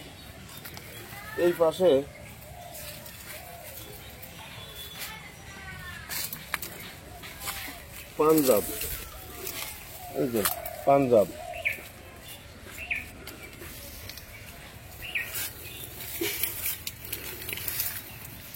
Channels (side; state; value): both; identical; correlation 1.00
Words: এই পাশে পাঞ্জাব, এই যে পাঞ্জাব।